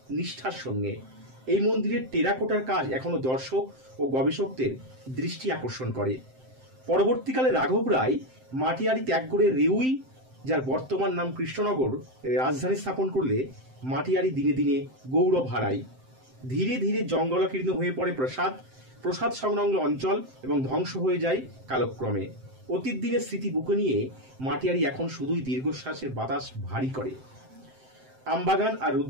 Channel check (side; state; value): left; late; 7.7 ms